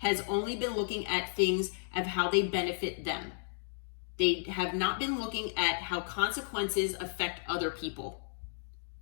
only been looking at things of how they benefit them. They have not been looking at how consequences affect other people.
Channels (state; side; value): silent; right; digital silence